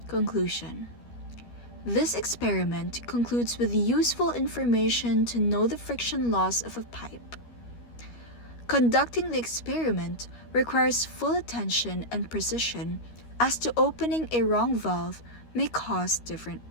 Conclusion. This experiment concludes with useful information to know the friction loss of a pipe. Conducting the experiment requires full attention and precision, as to opening a wrong valve may cause different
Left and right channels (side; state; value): right; late; 13 ms